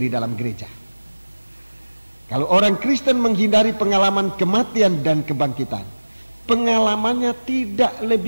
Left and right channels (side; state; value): both; inverted; correlation -1.00